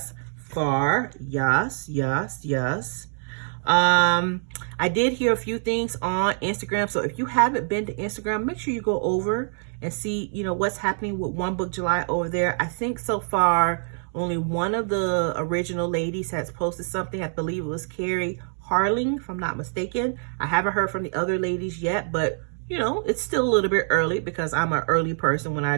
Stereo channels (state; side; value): silent; left; 62 dB below the other